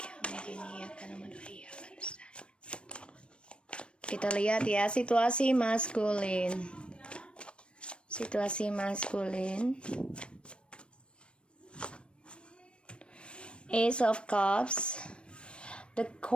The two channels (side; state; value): right; late; 0.057 ms